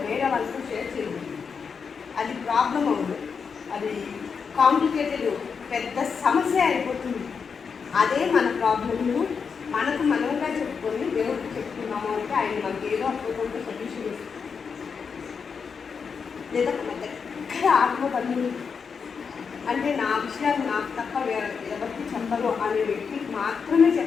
వేరే వాళ్ళతో షేర్ చేయాలి. అది ప్రాబ్లం అవ్వదు, అది కాంప్లికేటెడ్ పెద్ద సమస్య అయిపోతుంది. అదే మన ప్రాబ్లమ్ను మనకు మనముగా చెప్పుకొని దేవుడికి చెప్పుకున్నాము అంటే ఆయన మనకి ఏదో అద్భుతంగా సొల్యూషన్ ఇస్తుంది. లేదా మన దగ్గర ఆత్మబంధువులు అంటే నా విషయాలు నాకు తప్ప ఎవరికి చెప్పరు అనే వ్యక్తికి మాత్రమే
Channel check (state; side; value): quieter; right; 5.9 dB